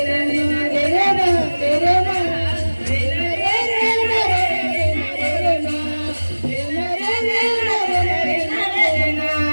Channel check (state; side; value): inverted; both; correlation -1.00